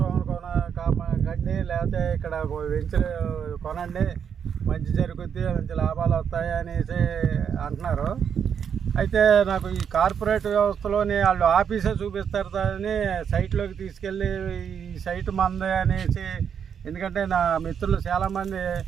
కండి, లేకపోతే ఇక్కడ వెంచర్ కొనండి, మంచి జరుగుద్ది, మంచి లాభాలు వస్తాయి అనేసి అంటున్నారు. అయితే నాకు ఈ కార్పొరేట్ వ్యవస్థలోని వాళ్ళు ఆఫీసే చూపిస్తారు అని సైట్లోకి తీసుకెళ్ళి ఈ సైట్ మందే అనేసి, ఎందుకంటే నా మిత్రులు చాలామంది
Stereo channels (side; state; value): left; quieter; 7.7 dB